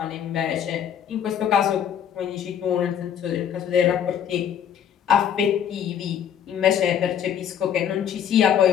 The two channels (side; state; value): right; quieter; 9.0 dB